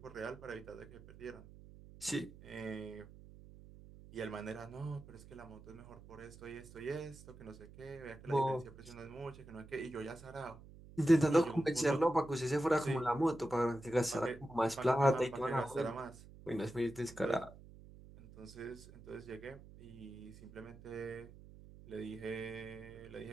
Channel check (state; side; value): noise; right; hum, 18 dB below the sound